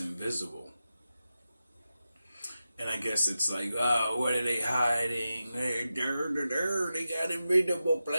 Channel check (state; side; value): inverted; both; correlation -0.91